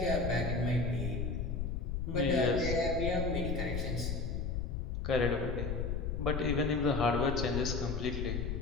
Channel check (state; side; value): noise; left; rumble, 2 dB below the sound